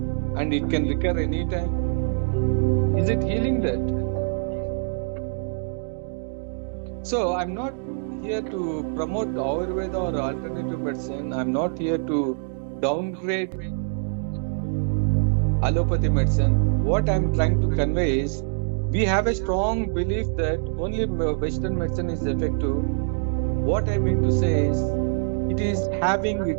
and it can recur anytime. Is it healing that? So I'm not here to promote Ayurveda or alternative medicine. I'm not here to downgrade allopathy medicine. What I'm trying to convey is, we have a strong belief that only Western medicine is effective. What I mean to say is, it is having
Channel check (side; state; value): left; silent; digital silence